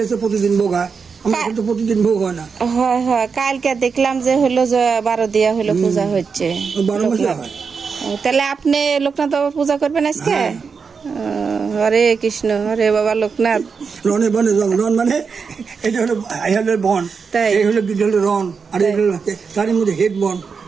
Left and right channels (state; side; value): quieter; left; 5.5 dB